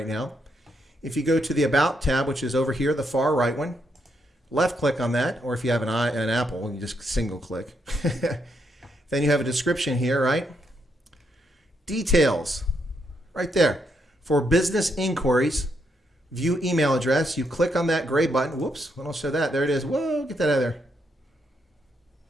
now. If you go to the About tab, which is over here, the far right one, left click on that, or if you have an Apple, you just single click. Then you have a description here, right? Details. Right there. For business inquiries, view email address. You click on that gray button. Whoops, I don't show that. There it is. Whoa, get that out of there.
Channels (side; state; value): both; normal; correlation 0.78